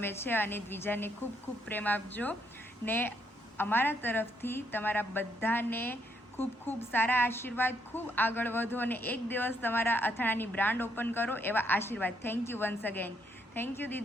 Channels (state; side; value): normal; both; correlation 0.74